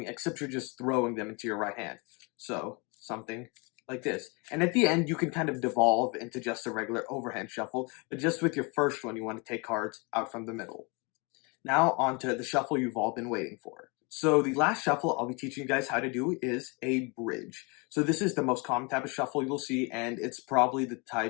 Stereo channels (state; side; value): quieter; right; 30.7 dB